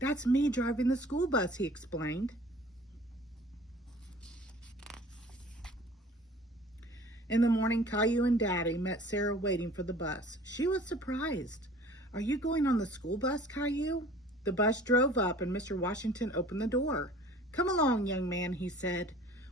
me driving the school bus," he explained. In the morning, Caillou and Daddy met Sarah waiting for the bus. She was surprised. "Are you going on the school bus, Caillou?" The bus drove up and Mr. Washington opened the door. "Come along, young man," he said.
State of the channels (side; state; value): both; normal; correlation 0.48